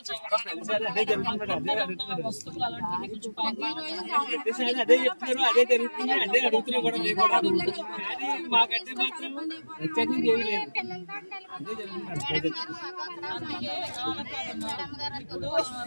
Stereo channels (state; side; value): inverted; both; correlation -1.00